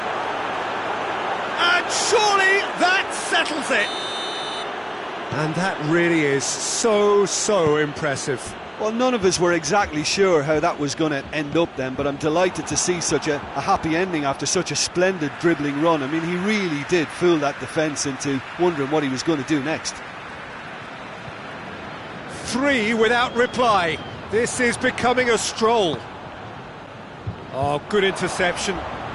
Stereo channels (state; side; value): identical; both; correlation 1.00